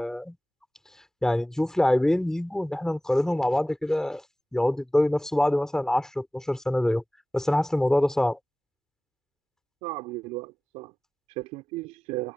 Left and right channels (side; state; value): both; normal; correlation 0.97